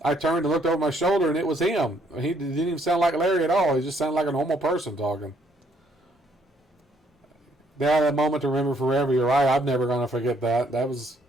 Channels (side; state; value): both; normal; correlation 0.68